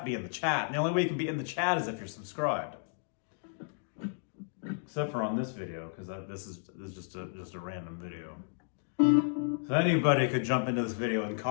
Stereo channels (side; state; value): right; silent; digital silence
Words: be in the chat. And the only way you can be in the chat is if you're subscribed. Except for on this video, because this is just a random video. So anybody could jump into this video and